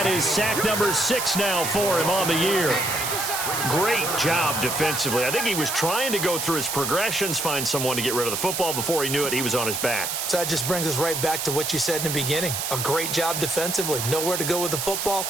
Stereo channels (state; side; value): noise; right; hiss, 2 dB below the sound